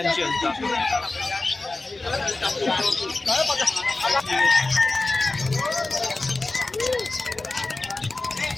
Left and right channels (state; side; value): quieter; right; 3.2 dB